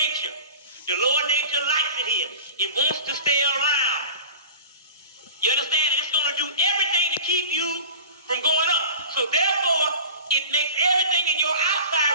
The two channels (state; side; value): inverted; both; correlation -0.36